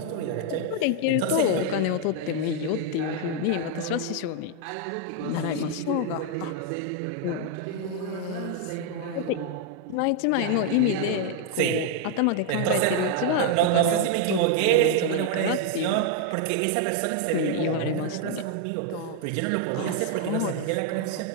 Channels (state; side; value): different; both; correlation 0.00